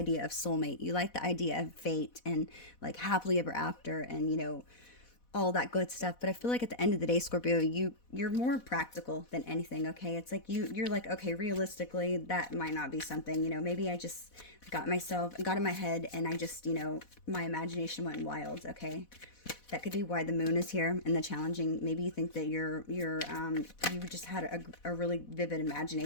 of soulmate. You like the idea of fate and like happily ever after and, you know, all that good stuff. But I feel like at the end of the day, Scorpio, you're more practical than anything, okay? It's like you're like, okay, realistically, that might not be something, you know, maybe I just got in my head and I just, you know, my imagination went wild, okay? That could be why the moon is here and the challenging. Maybe you think that you just had a really vivid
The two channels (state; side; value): late; right; 4.1 ms